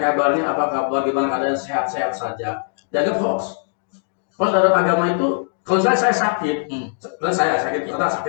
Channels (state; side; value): silent; right; digital silence